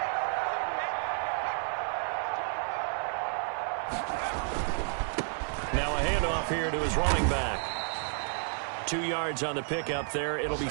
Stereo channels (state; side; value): silent; left; 57 dB below the other